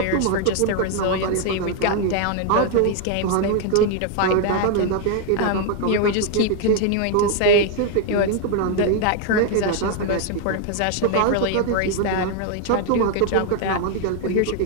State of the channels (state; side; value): different; both; correlation 0.01